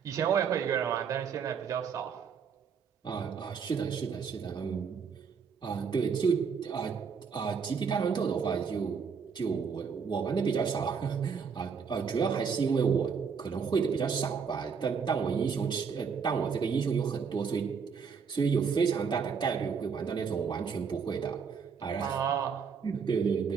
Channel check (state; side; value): quieter; left; 6.2 dB